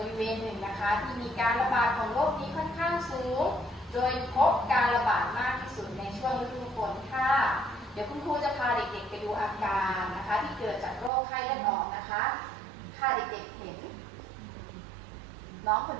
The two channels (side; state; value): left; drops out; at 11.1 s